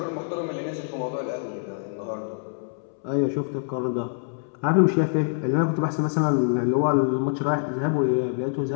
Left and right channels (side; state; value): right; silent; 61 dB below the other